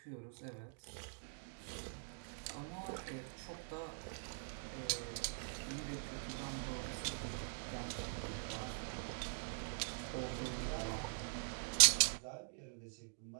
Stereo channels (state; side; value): silent; left; digital silence